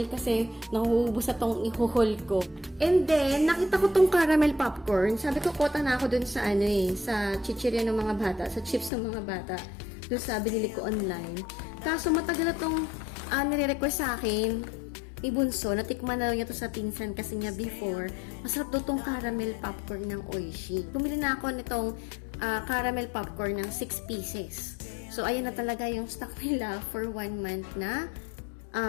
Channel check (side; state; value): right; drops out; at 8.9 s